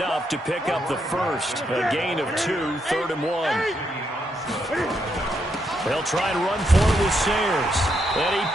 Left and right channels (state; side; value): normal; both; correlation 0.79